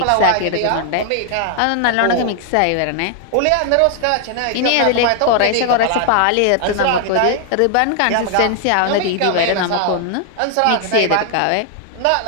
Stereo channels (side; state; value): both; different; correlation 0.00